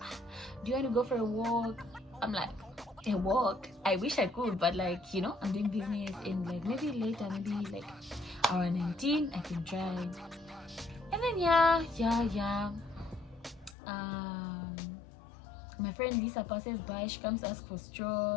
do you want to go for a walk? I'm like, a walk? I wish I could, but like, I'm doing business, and like, maybe later, maybe like around 19, I can try. And then yeah. My friend Lisa passes by. She comes to ask for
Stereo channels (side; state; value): right; drops out; at 13.8 s